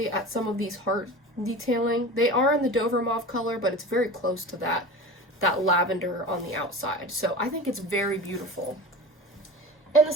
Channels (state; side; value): normal; both; correlation 0.33